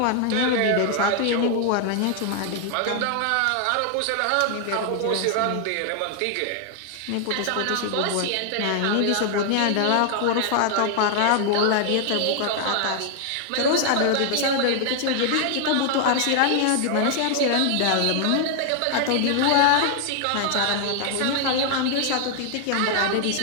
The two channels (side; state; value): both; different; correlation 0.00